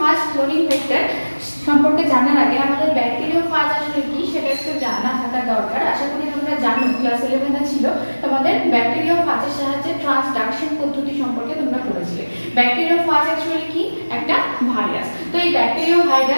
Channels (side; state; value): both; inverted; correlation -1.00